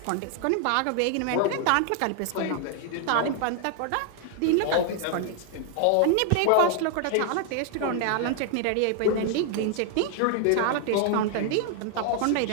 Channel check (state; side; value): different; both; correlation 0.00